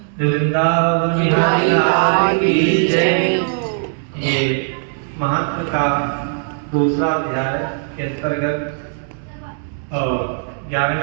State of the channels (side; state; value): left; silent; 67 dB below the other